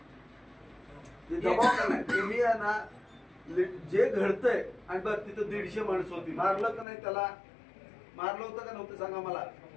दबाव का नाही. तुम्ही ना जे घडतंय आणि बरं तिथं 150 माणसं होती मारलं का नाही त्याला मारलं होतं का नव्हतं सांगा मला.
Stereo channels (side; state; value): right; drops out; at 6.9 s